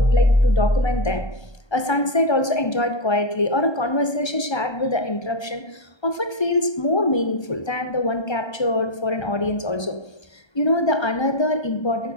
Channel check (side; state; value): right; late; 1.3 ms